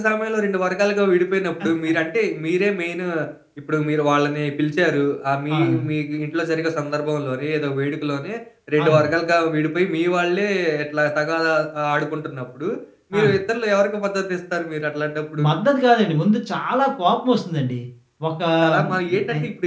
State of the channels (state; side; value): identical; both; correlation 1.00